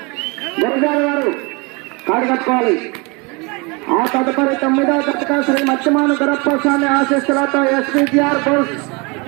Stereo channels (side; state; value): left; quieter; 28.9 dB